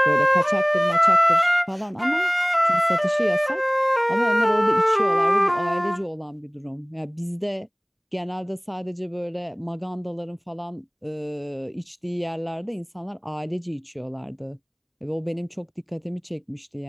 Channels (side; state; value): both; identical; correlation 1.00